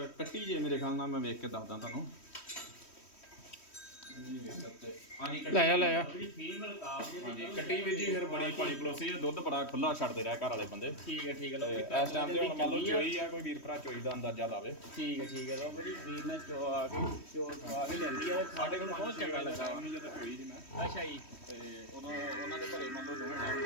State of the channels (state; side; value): late; right; 3.1 ms